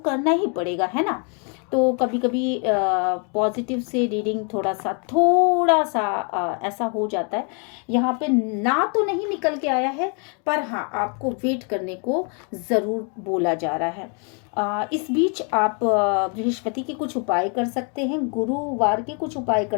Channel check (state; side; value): quieter; right; 38.2 dB